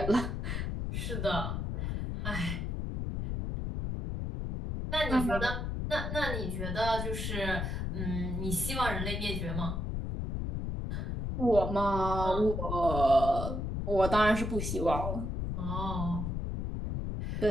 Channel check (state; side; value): noise; left; rumble, 2 dB below the sound